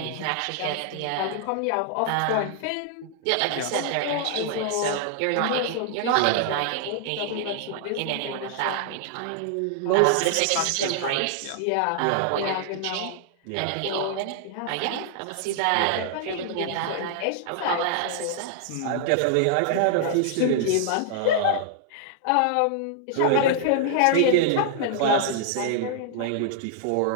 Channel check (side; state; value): both; different; correlation -0.01